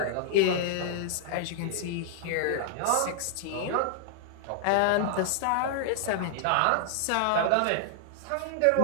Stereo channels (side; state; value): both; different; correlation -0.01